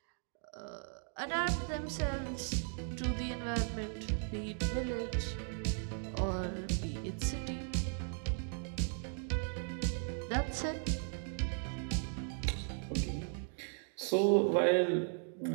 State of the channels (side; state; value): left; silent; 53 dB below the other